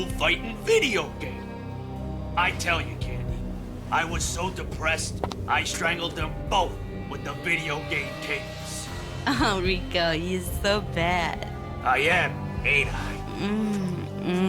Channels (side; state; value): both; identical; correlation 1.00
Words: fighting video game. I tell you, Candy, I was so depressed, I strangled them both with the video game cables. Oh, Rico, you're so bad. I am, ain't I?